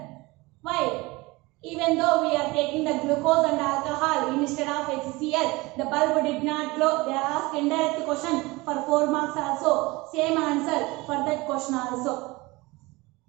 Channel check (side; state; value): left; quieter; 22.7 dB